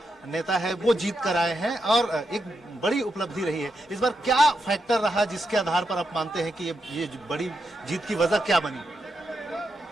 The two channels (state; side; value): normal; both; correlation 0.84